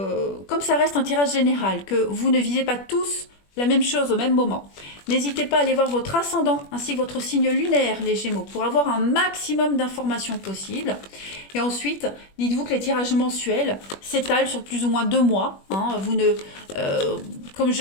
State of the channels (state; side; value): late; right; 21 ms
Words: ça reste un tirage général, que vous ne visez pas tous la même chose au même moment, n'hésitez pas à aller voir votre ascendant ainsi que votre signe lunaire, les Gémeaux, pour avoir un maximum d'informations possibles. Et ensuite, dites-vous que les tirages mensuels s'étalent sur plus ou moins 2 mois. Vous ne, comme